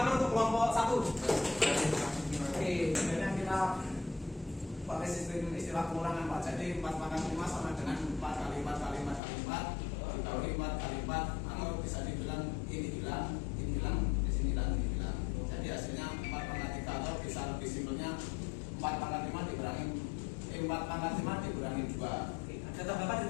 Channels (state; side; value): drops out; right; at 9.2 s